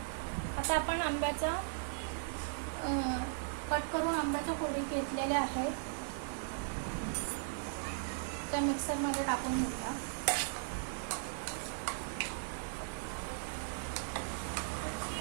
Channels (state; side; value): silent; left; 53 dB below the other